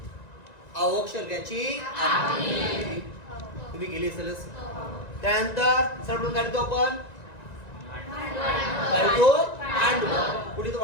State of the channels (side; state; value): right; late; 1.9 ms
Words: आवश्यक लेख्याची आखणी. तुम्ही गेली असेलच. त्यानंतर सर्वप्रथम काय लिहितो आपण? कुठे तो